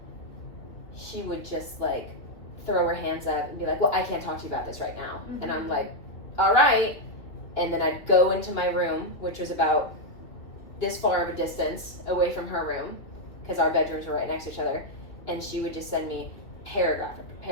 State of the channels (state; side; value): late; right; 2.9 ms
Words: she would just, like, throw her hands up and be like, well, I can't talk to you about this right now. And I'm like, all right. And then I'd go into my room, which was about this far of a distance away from her room, because our bedrooms were right next to each other. And she would just send me paragraph after